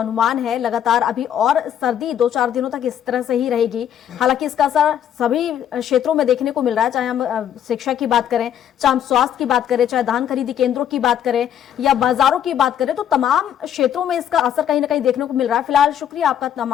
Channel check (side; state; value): right; quieter; 9.8 dB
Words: है, लगातार अभी और सर्दी 2-4 दिनों तक इस तरह से ही रहेगी। हालांकि इसका असर सभी क्षेत्रों में देखने को मिल रहा है, चाहे हम शिक्षा की बात करें, चाहे हम स्वास्थ्य की बात करें, चाहे धान खरीदी केंद्रों की बात करें या बाजारों की बात करें, तो तमाम क्षेत्रों में इसका असर कहीं ना कहीं देखने को मिल रहा है। फिलहाल शुक्रिया आपका